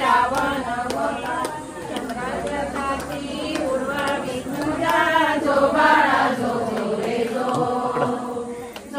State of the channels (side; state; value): both; identical; correlation 1.00